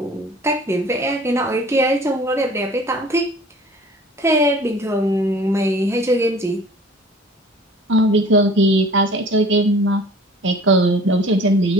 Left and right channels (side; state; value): both; normal; correlation 0.48